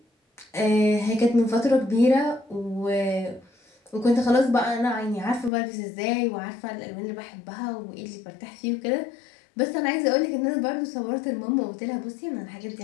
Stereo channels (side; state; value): right; drops out; at 5.5 s